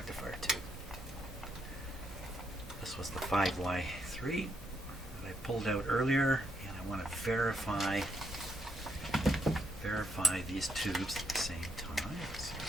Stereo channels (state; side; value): normal; both; correlation 0.76